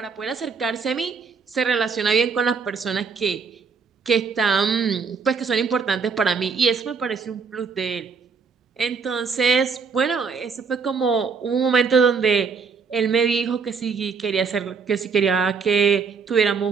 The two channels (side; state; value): left; quieter; 5.4 dB